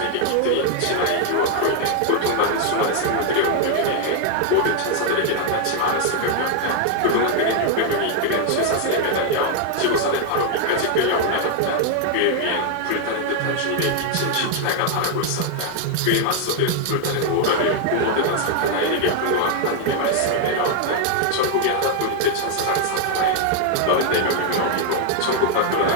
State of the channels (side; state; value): both; different; correlation 0.00